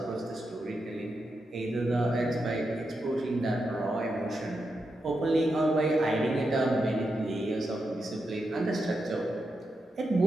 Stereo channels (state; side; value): normal; both; correlation 0.86